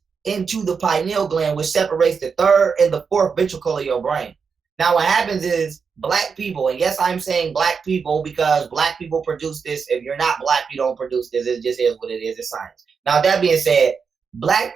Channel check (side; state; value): left; quieter; 5.7 dB